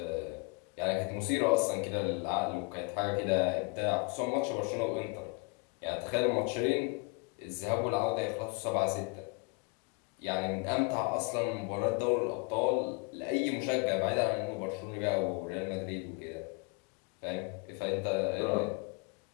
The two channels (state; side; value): quieter; right; 30.8 dB